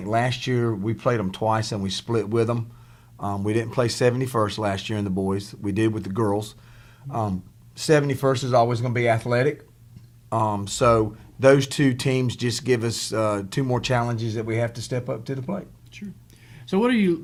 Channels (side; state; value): both; identical; correlation 1.00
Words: last year we played them twice and we split with them. We didn't play 71st last year in the boys. We did with the girls. 71st is always going to be athletic. So those two teams just give us 2 more challenges that we have to step up to the plate. Sure. So what are